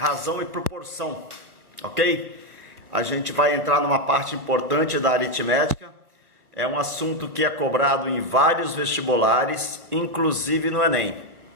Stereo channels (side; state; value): left; late; 1.3 ms